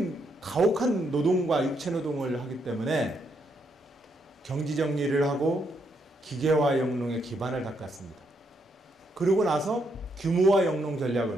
가혹한 노동과 육체노동을 하기 때문에 경지정리를 하고 기계화 영농에 기반을 닦았습니다. 그러고 나서 규모화 영농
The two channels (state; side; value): normal; both; correlation 0.77